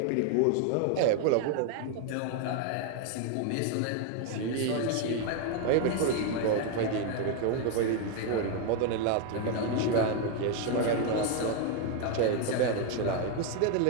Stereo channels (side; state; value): both; different; correlation 0.01